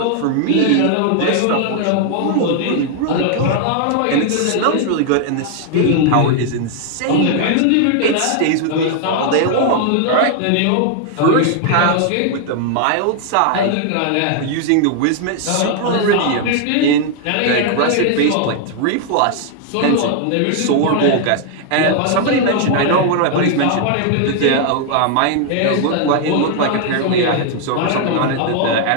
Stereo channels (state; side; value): different; both; correlation 0.00